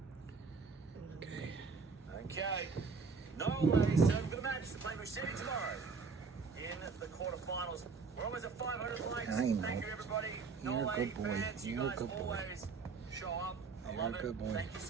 Okay. Okay. Norway served for the match to play Musetti tomorrow in the quarterfinals. We're almost at 500 likes. I know. Thank you, everybody. You're a Norway good boy. fans, you You're a guys good boy. always show up. I You're love a it. good boy. Thank you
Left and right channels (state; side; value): quieter; left; 4.8 dB